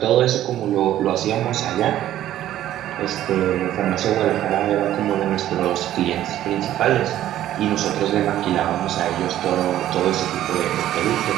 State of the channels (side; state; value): left; quieter; 12.7 dB